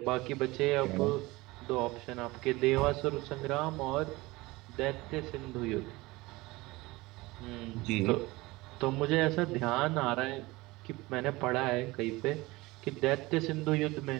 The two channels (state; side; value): quieter; left; 21.2 dB